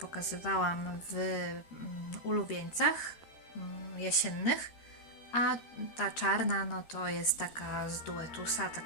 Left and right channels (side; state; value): right; late; 13 ms